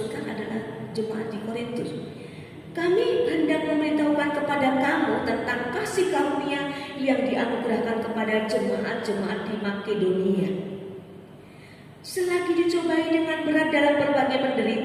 adalah jemaat di Korintus. Kami hendak memberitahukan kepada kamu tentang kasih karunia yang dianugerahkan kepada jemaat-jemaat di Makedonia. Selagi dicobai dengan berat dalam berbagai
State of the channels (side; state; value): both; identical; correlation 1.00